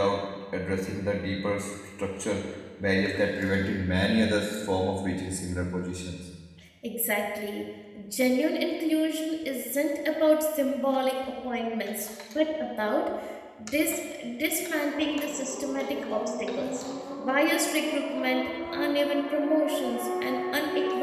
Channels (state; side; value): identical; both; correlation 1.00